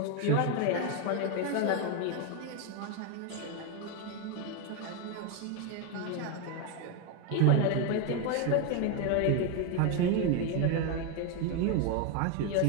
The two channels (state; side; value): different; both; correlation 0.02